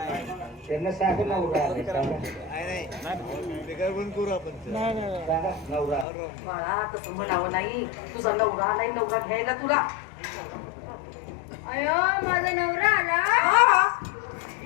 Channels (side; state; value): right; drops out; at 6.1 s